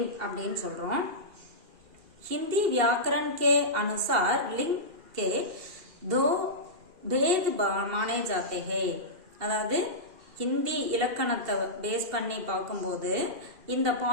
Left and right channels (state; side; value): late; left; 2.4 ms